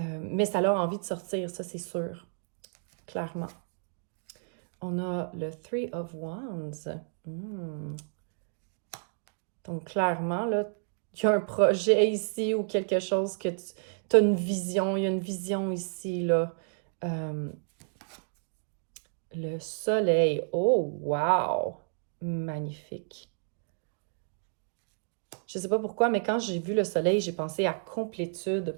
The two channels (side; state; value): left; silent; digital silence